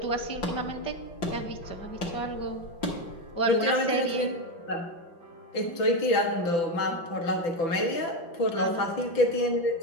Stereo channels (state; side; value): late; right; 5.9 ms